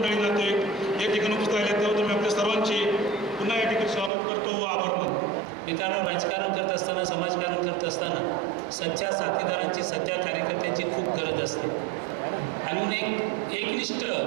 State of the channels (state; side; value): drops out; left; at 4.1 s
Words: नातेवाईक या ठिकाणी उपस्थित राहिले, त्याबद्दल मी आपल्या सर्वांचे पुन्हा या ठिकाणी स्वागत करतो व आभार मानतो। मित्रांनो, राजकारण करत असताना, समाजकारण करत असताना सच्च्या साथीदारांची, सच्च्या कार्यकर्त्यांची खूप गरज असते। आणि एकनिष्ठ